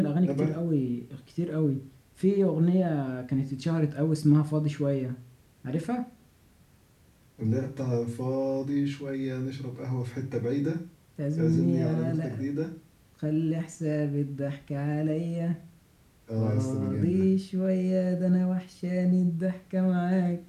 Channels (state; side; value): identical; both; correlation 1.00